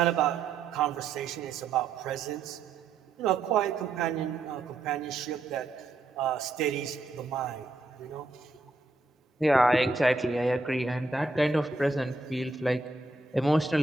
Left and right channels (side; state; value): left; quieter; 3.3 dB